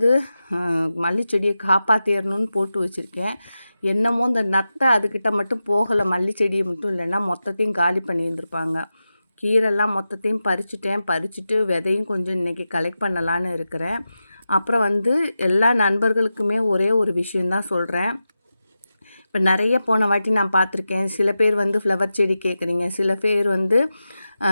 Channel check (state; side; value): inverted; both; correlation -0.92